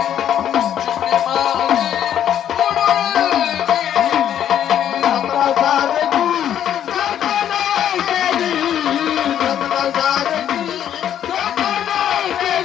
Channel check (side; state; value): right; quieter; 10.2 dB